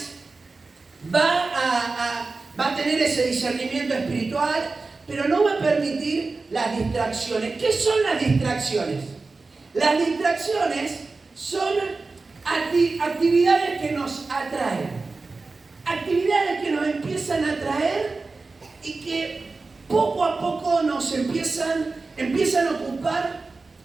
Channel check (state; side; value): quieter; left; 3.8 dB